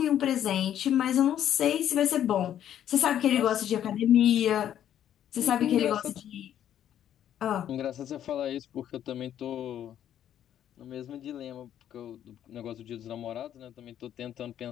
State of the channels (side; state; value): right; quieter; 10.6 dB